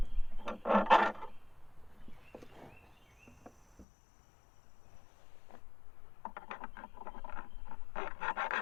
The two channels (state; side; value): drops out; right; at 3.9 s